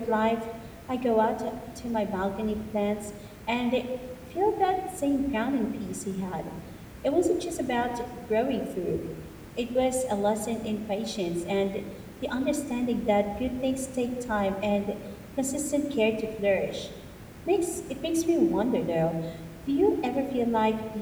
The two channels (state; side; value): identical; both; correlation 1.00